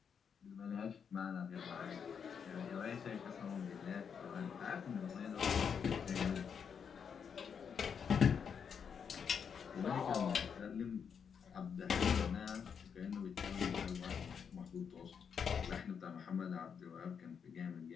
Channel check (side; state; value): right; quieter; 6.9 dB